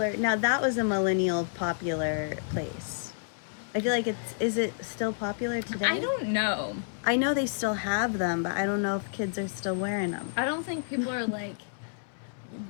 Now, that was a millennial popular place. I feel like is it still popular today? I don't know. I know they still have them, but I don't know if kids are still wearing them. I don't think people are like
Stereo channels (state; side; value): silent; right; 58 dB below the other